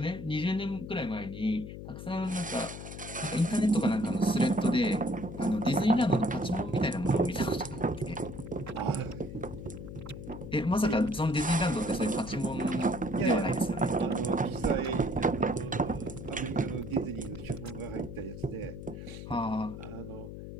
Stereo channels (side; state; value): left; noise; hum, 10 dB below the sound